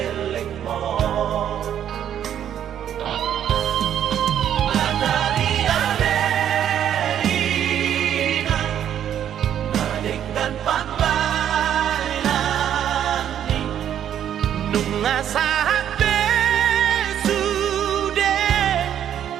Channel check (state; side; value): quieter; left; 10.0 dB